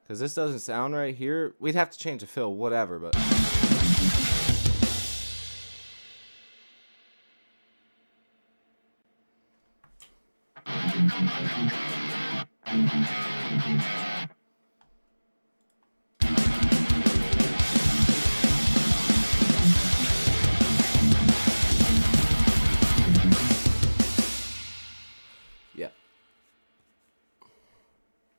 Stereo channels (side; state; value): both; inverted; correlation -1.00